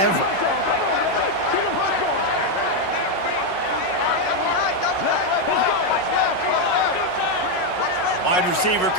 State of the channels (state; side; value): late; right; 5.4 ms